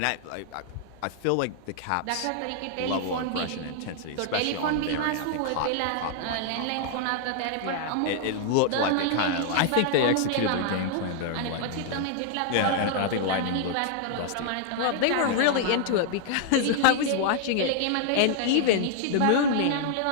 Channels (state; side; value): different; both; correlation -0.01